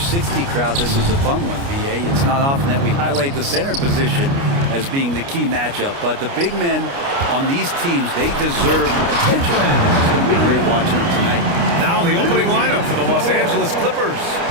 crowd, this is a fun one, BA. It's not often that we highlight the center position as being the key matchup, but the big men on these teams, they deserve attention. It's going to be great watching them tonight. Now the opening lineup for the Los Angeles Clippers.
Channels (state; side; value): late; left; 29 ms